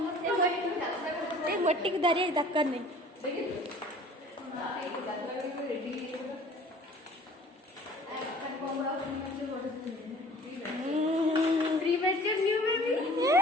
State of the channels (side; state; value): both; normal; correlation 0.48